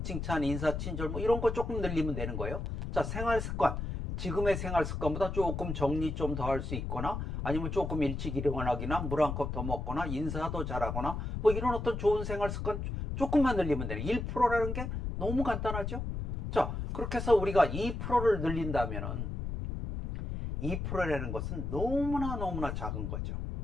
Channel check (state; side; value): noise; left; rumble, 4 dB below the sound